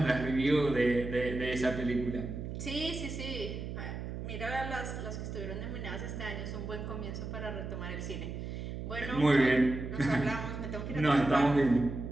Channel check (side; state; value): right; noise; hum, 6 dB below the sound